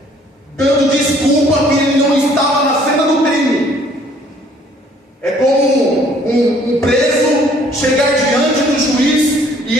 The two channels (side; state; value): both; normal; correlation 0.59